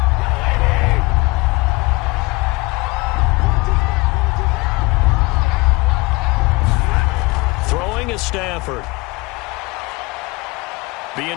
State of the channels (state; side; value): quieter; right; 24.2 dB